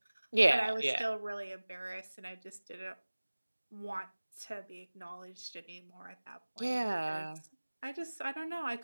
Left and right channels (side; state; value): both; inverted; correlation -1.00